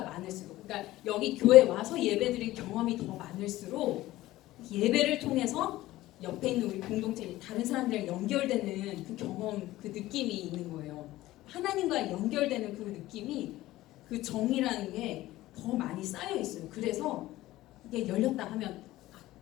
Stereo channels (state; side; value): quieter; right; 16.5 dB